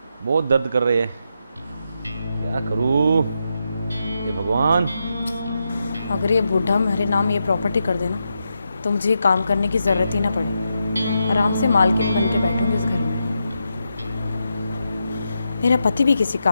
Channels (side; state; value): both; inverted; correlation -0.85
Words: बहुत दर्द कर रही है। क्या करूँ? ये भगवान। अगर ये बूढ़ा मेरे नाम ये प्रॉपर्टी कर देना तो मुझे ये काम करने की ज़रूरत ही ना पड़े। आराम से मालकिन बन के बैठूंगी इस घर में। मेरा पति भी किसी